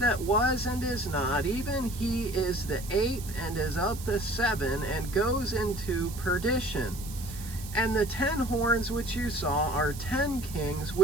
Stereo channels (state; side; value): noise; right; hiss, 14 dB below the sound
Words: was and is not, even he is the 8th, and is of the 7, and goes into perdition. And the 10 horns which you saw are 10 kings,